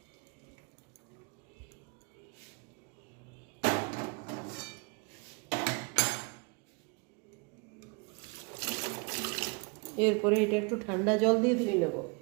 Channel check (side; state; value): left; quieter; 31.7 dB